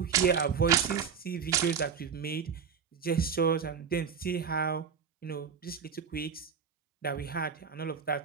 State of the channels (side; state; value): left; quieter; 6.7 dB